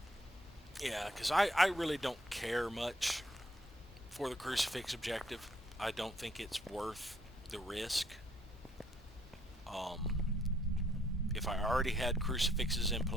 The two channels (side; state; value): both; normal; correlation 0.68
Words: Yeah, because I really don't care much for the crucifix objective. I don't think it's worth the risk. If I already had crucifixes in